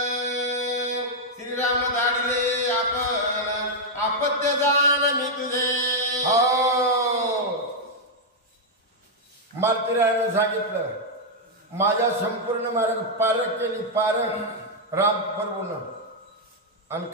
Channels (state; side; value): normal; both; correlation -0.03